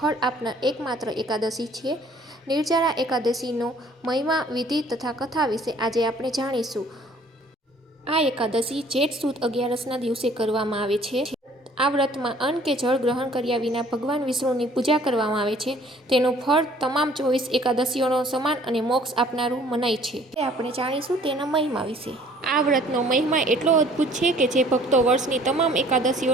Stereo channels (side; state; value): both; normal; correlation 0.56